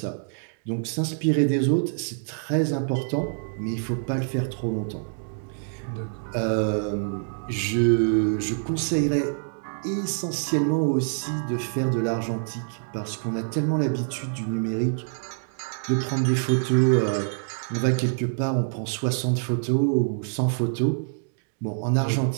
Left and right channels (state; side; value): silent; left; digital silence